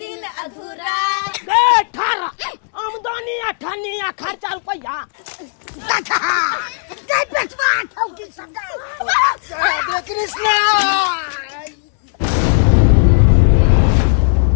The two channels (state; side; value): silent; right; digital silence